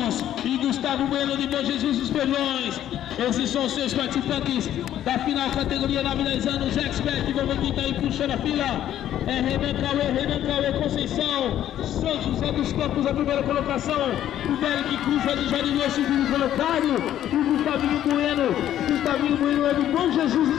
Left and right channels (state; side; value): quieter; right; 11.6 dB